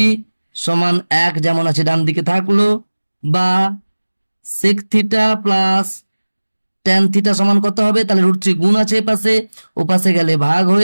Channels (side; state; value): both; inverted; correlation -1.00